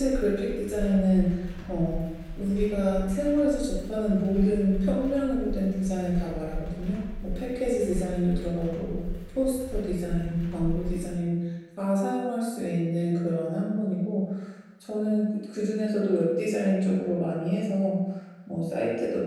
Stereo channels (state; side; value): identical; both; correlation 1.00